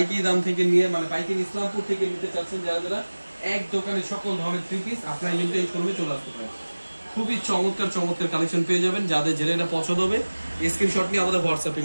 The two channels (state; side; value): inverted; both; correlation -1.00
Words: দাম থেকে নিয়ে, মানে পাইকারি ইসলামপুর থেকে নিতে চাচ্ছেন যারা যারা, এক দোকানে সকল ধরনের 3 পিস আপনারা কিন্তু এই শোরুমে চলে আসতে পারেন। খুবই চমৎকার চমৎকার কালেকশন পেয়ে যাবেন। যাদের যেটা এটা পছন্দ হবে স্ক্রিনশট নিয়ে আমাদের হোয়াটসঅ্যাপে